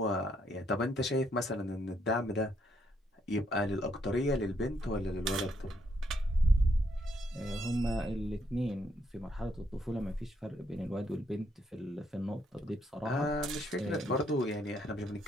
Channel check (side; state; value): both; normal; correlation 0.74